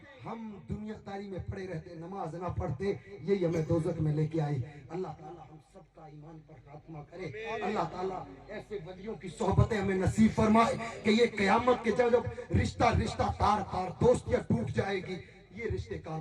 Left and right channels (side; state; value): both; identical; correlation 1.00